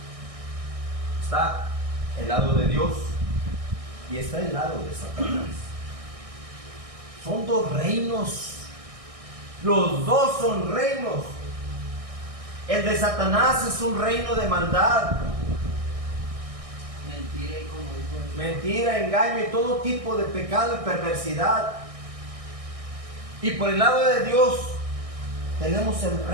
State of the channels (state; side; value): late; left; 1.6 ms